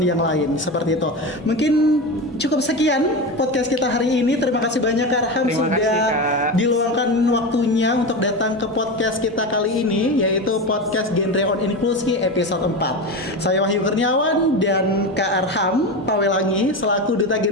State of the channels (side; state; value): both; normal; correlation 0.21